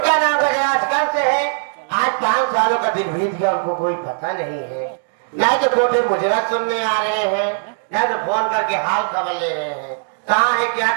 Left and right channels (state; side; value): silent; left; digital silence